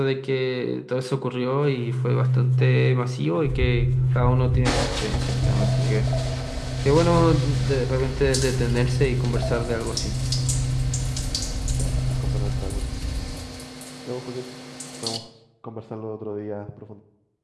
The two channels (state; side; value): identical; both; correlation 1.00